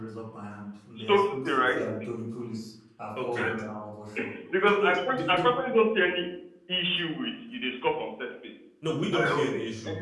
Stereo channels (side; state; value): both; identical; correlation 1.00